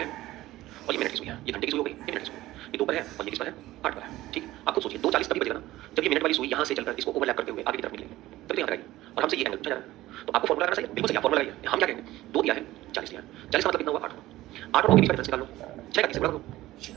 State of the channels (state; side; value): quieter; left; 16.4 dB